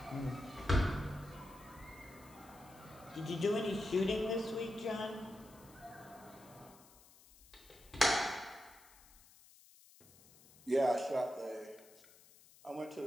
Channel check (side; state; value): left; noise; hiss, 24 dB below the sound